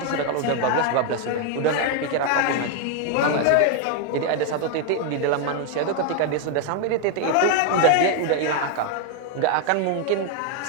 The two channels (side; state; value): both; different; correlation 0.01